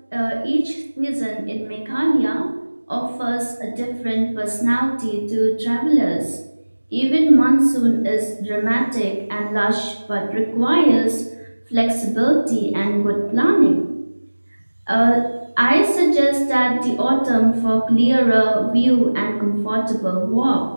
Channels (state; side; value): inverted; both; correlation -1.00